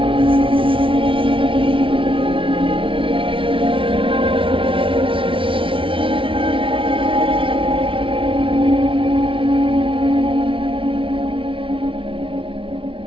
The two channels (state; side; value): late; left; 0.25 ms